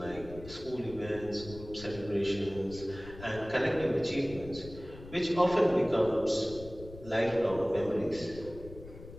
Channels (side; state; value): left; noise; rumble, 15 dB below the sound